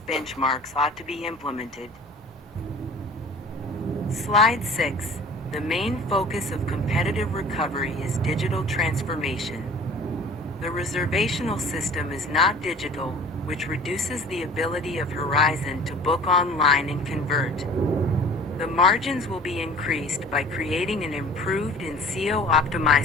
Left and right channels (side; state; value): both; normal; correlation 0.46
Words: benchmarks ought to be implemented. Slide 6. The main focus of competitive recovery is digital transformation. The reservational system is not digital, which reduces the ability of Horizon to book online and convert. The margins will be increased by creating an improved and